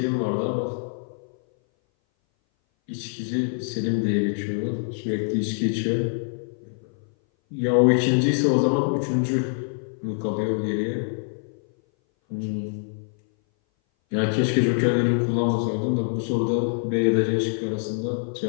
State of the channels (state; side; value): silent; right; 59 dB below the other